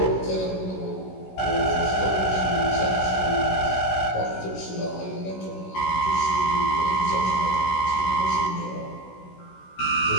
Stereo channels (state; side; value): late; right; 16 ms